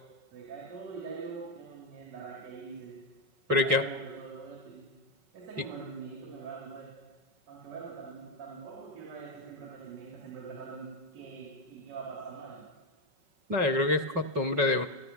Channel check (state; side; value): late; left; 5.3 ms